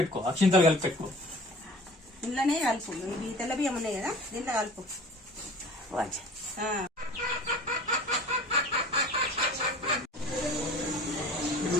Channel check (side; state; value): both; normal; correlation 0.44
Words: అక్షింతలు కలిపి పెట్టుకో. ఇంట్లోనే కలుపు. ఇవి తెల్ల బియ్యం ఉన్నాయి కదా, దీంట్లో కలుపు.